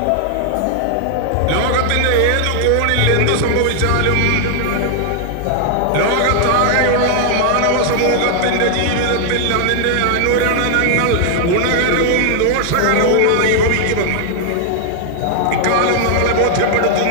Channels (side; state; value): both; different; correlation 0.00